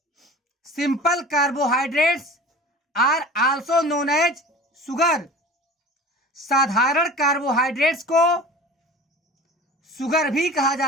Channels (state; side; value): normal; both; correlation 0.40